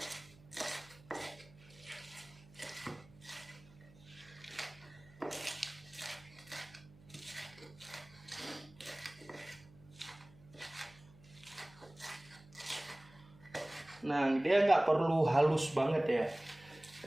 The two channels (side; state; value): right; noise; hum, 24 dB below the sound